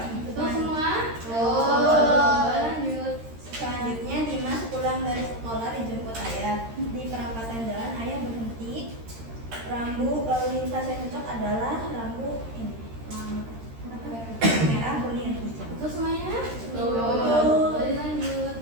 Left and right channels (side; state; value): left; late; 13 ms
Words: Betul semua? Lanjut. Selanjutnya Dimas pulang dari sekolah dijemput ayah. Di perempatan jalan ayah berhenti. Rambu lalu lintas yang cocok adalah rambu ini, merah, kuning, hijau. Betul semuanya? Betul. Lanjut.